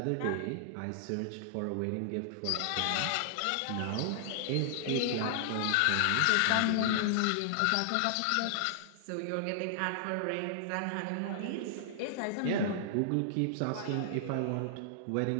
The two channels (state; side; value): different; both; correlation -0.01